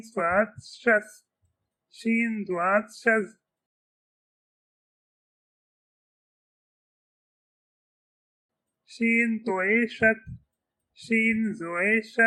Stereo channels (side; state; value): both; identical; correlation 1.00